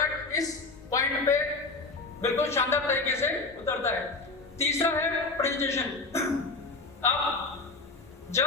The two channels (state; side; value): quieter; right; 3.7 dB